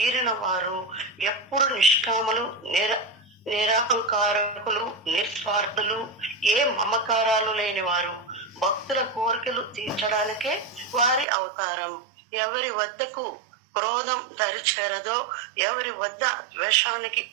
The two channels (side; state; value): left; drops out; at 11.2 s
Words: వారు ఎప్పుడు నిష్కాములు, నిరహంకారకులు, నిస్వార్థులు, ఏ మమకారాలు లేని వారు. భక్తుల కోరికలు తీర్చడానికే వారి అవతారం. ఎవరి వద్దకు క్రోధం దరిచేరదో, ఎవరి వద్ద ద్వేషానికి